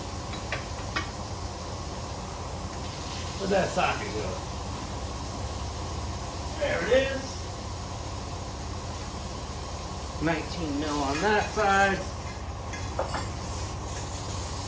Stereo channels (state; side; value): identical; both; correlation 1.00